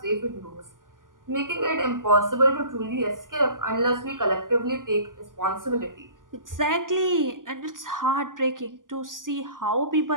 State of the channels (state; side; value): late; left; 0.89 ms